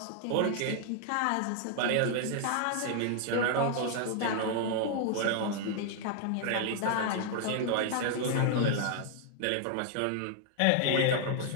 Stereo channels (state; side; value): different; both; correlation 0.00